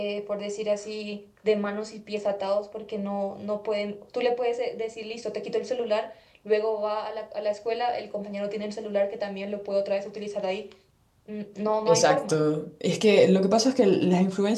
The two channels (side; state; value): both; identical; correlation 1.00